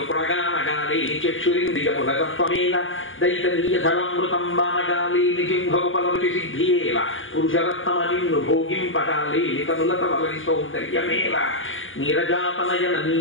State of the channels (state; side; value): late; right; 0.58 ms